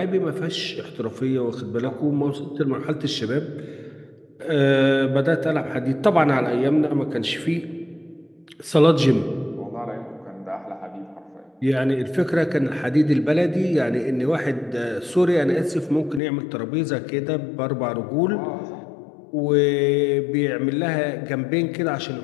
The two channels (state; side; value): drops out; right; at 16.2 s